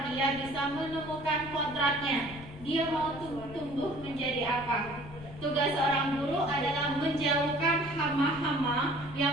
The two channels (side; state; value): left; noise; rumble, 15 dB below the sound